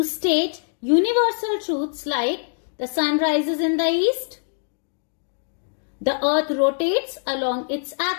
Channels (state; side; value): silent; right; digital silence